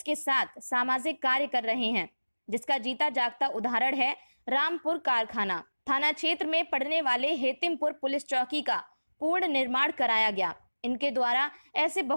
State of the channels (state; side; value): inverted; both; correlation -1.00